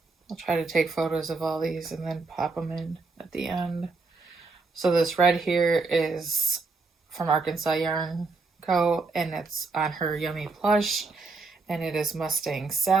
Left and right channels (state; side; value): quieter; left; 4.0 dB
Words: I'll try to take photos of all these and then pop them in at the end. So this red here is from Arkansas Yarn Co. And it's on her Yummy plush. And it is Mustang